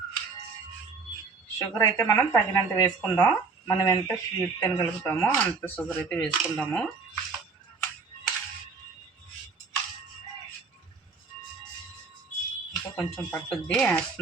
షుగర్ అయితే మనం తగినంత వేసుకుందాం. మనం ఎంత స్వీట్ తినగలుగుతామో అంత షుగర్ అయితే వేసుకుందాము. ఇంకా కొంచెం పట్టుద్ది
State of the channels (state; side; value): quieter; left; 4.6 dB